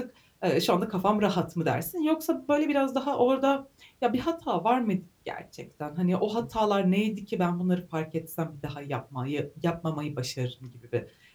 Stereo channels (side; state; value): both; identical; correlation 1.00